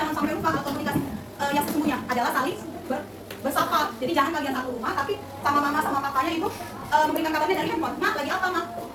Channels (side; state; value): both; identical; correlation 1.00